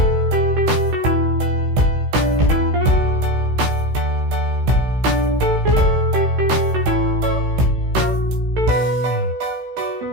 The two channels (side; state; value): left; late; 16 ms